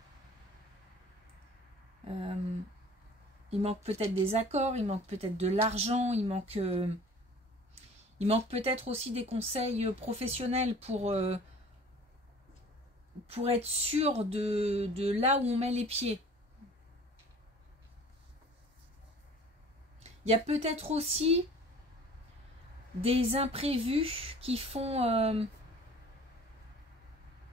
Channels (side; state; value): both; normal; correlation 0.46